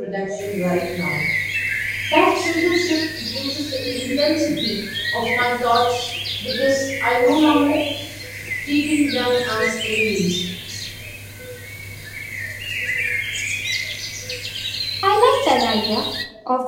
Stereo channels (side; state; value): both; identical; correlation 1.00